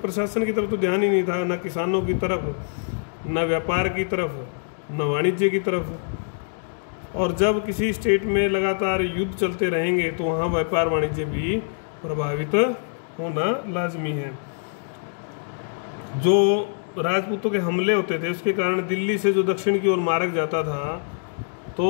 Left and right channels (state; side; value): silent; right; digital silence